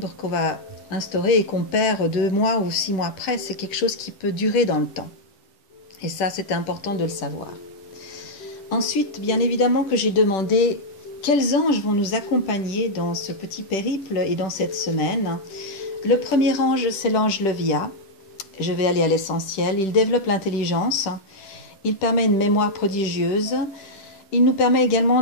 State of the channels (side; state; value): right; late; 10 ms